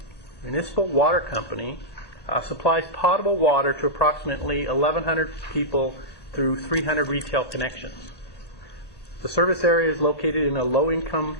Water Company supplies potable water to approximately 1,100 people through 300 retail connections. The service area is located in a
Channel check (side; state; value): right; late; 1.1 ms